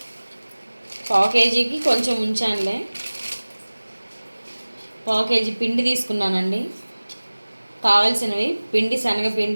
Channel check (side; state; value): both; inverted; correlation -1.00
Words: పావు కేజీకి కొంచెం ఉంచానులే. పావు కేజీ పిండి తీసుకున్నానండి. కావాల్సినవి పిండి,